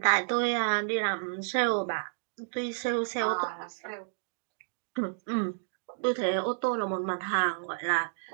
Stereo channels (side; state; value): left; silent; digital silence